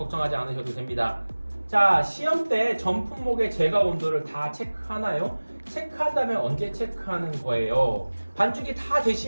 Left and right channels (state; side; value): inverted; both; correlation -1.00